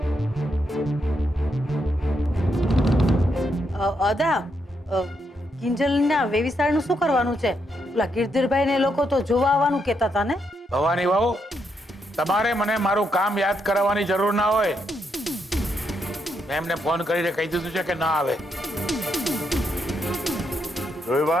અદા, કિંજલના વેવિસાળનું શું કરવાનું છે? ઓલા ગિરધરભાઈ ને લોકો તો જોવા આવવાનું કહેતા હતા ને? ભવાની વહુ, તમારે મને મારું કામ યાદ કરાવવાની જરૂર ના હોય. મેં એમને ફોન કરીને કહી દીધું છે કે ના આવે. જોઈ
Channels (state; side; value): normal; both; correlation 0.79